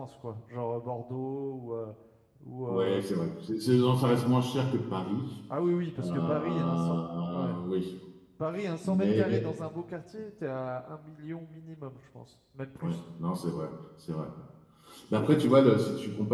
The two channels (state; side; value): identical; both; correlation 1.00